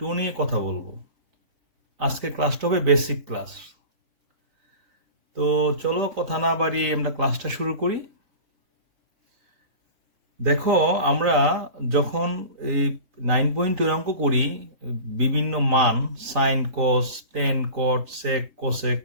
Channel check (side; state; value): left; late; 3.5 ms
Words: নিয়ে কথা বলবো। আজকে ক্লাসটা হবে বেসিক ক্লাস। তো চলো কথা না বাড়িয়ে আমরা ক্লাসটা শুরু করি। দেখো, আমরা যখন এই 9.2 অঙ্ক করি, বিভিন্ন মান sine cos tan cot sec cosec